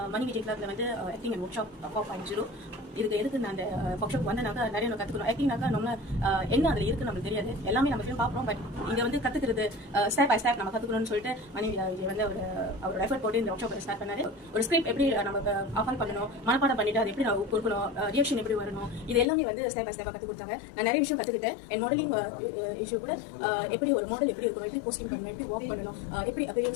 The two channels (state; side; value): drops out; right; at 19.2 s